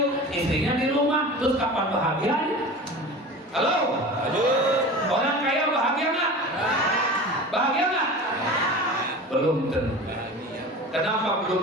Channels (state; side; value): normal; both; correlation 0.34